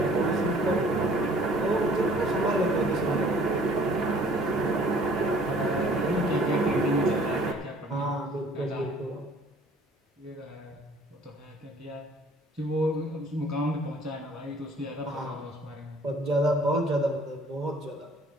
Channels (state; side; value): normal; both; correlation 0.55